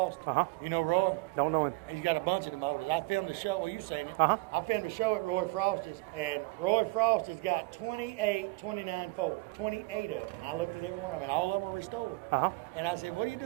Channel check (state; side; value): quieter; left; 23.4 dB